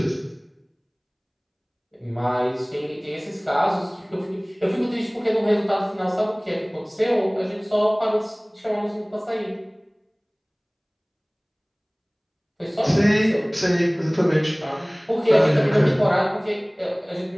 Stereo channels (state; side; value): identical; both; correlation 1.00